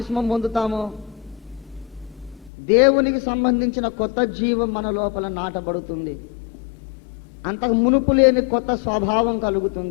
పొందుతామో దేవునికి సంబంధించిన కొత్త జీవం మన లోపల నాటబడుతుంది. అంతకు మునుపు లేని కొత్త స్వభావం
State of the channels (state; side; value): drops out; right; at 2.5 s